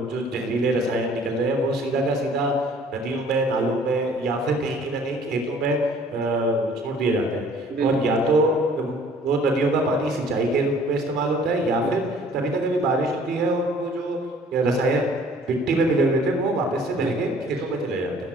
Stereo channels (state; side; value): normal; both; correlation 0.54